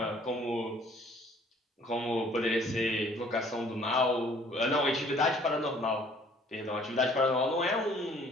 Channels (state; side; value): normal; both; correlation 0.57